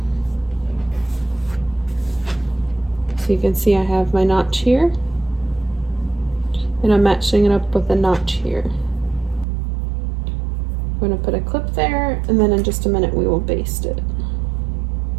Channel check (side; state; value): left; drops out; at 9.5 s